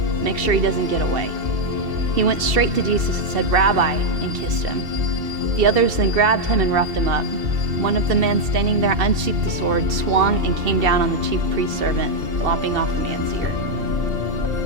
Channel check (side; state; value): left; late; 2.7 ms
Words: "Make sure he doesn't get away." He went straight to Jesus and said, "Rabbi," and kissed him. The others then grabbed him and roughed him up. One of the men standing there unsheathed the sword, swung, and came down on the chief priest's servant, lopping off the man's ear.